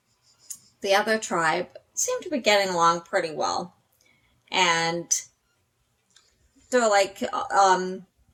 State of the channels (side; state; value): both; identical; correlation 1.00